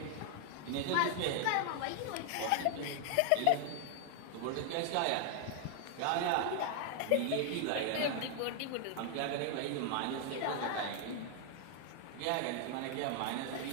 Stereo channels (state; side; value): different; both; correlation 0.00